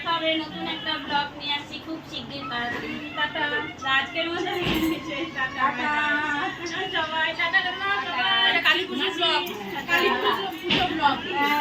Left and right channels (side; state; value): both; identical; correlation 1.00